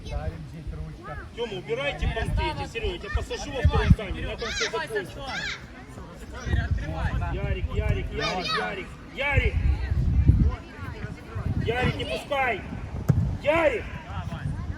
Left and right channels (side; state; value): both; identical; correlation 1.00